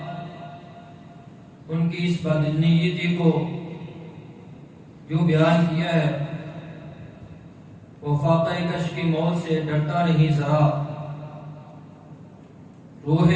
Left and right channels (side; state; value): both; identical; correlation 1.00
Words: ان کی اس بدنیتی کو جو بیان کیا ہے، وہ فاقہ کش کی موت سے ڈرتا نہیں ذرا، روح